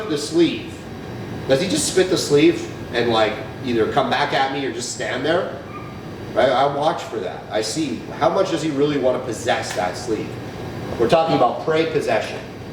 the sleeve, does he just spit the sleeve and like either come back at me or just stand there? Right? I watch for that. I see how much does he really want to possess that sleeve. We're talking about prey possession.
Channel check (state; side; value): identical; both; correlation 1.00